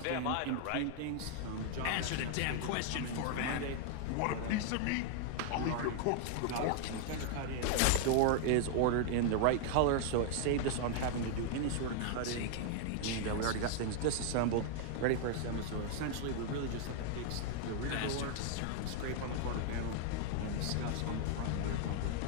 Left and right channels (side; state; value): both; different; correlation 0.00